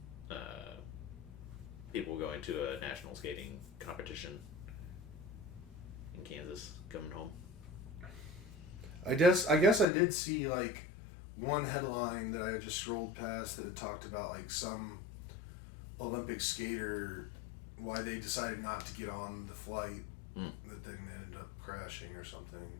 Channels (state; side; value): drops out; right; at 9.9 s